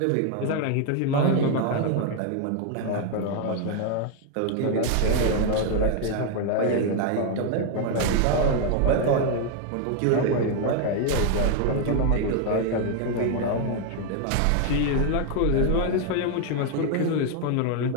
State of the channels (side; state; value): both; different; correlation 0.01